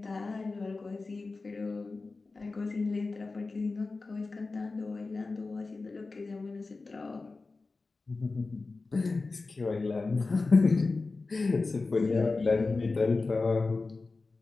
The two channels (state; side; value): quieter; right; 3.7 dB